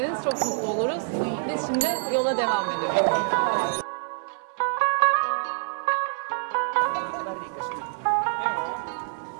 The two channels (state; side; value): silent; left; 58 dB below the other